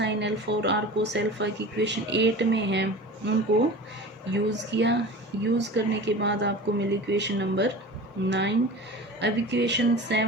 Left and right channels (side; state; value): both; normal; correlation 0.36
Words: अल्फा और r कोस अल्फा की इक्वेशन 8 में है उनको यूज़ किया। यूज़ करने के बाद आपको मिली इक्वेशन नंबर 9। अब इक्वेशन